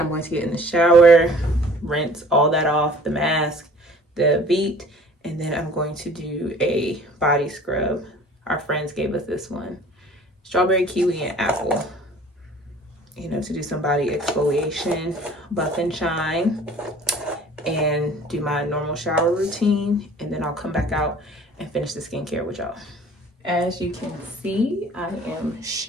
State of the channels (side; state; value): both; normal; correlation 0.50